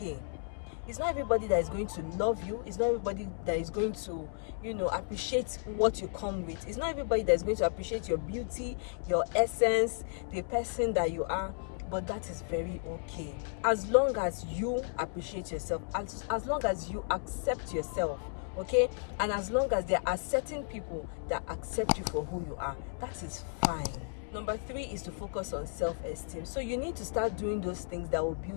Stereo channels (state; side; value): silent; right; 55 dB below the other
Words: It's not everybody that is going to love you. It's not everybody that is going to, appreciate what you come with. It's not everybody that is going to appreciate your beauty, your essence, the person that you are. But that is very okay. As long as you appreciate yourself, as long as you accept yourself, okay? And as long as there are certain people that accept you for who you are, that is fine. Number 3 is to focus on self-esteem. So you need to start doing those things that will